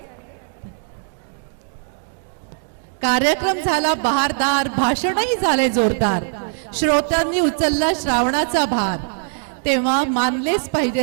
कार्यक्रम झाला बहारदार, भाषणही झाले जोरदार, श्रोत्यांनी उचलला श्रावणाचा भार, तेव्हा मानलेच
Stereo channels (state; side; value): silent; left; digital silence